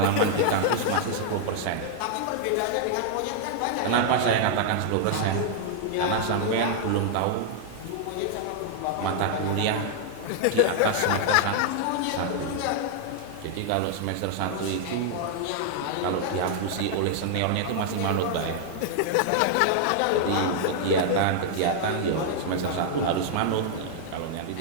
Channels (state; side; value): different; both; correlation 0.00